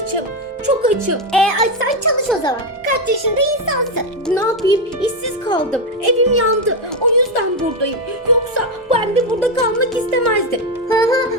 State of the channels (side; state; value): both; normal; correlation 0.07